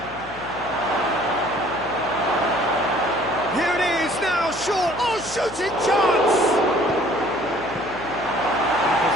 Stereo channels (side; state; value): left; noise; hum, 17 dB below the sound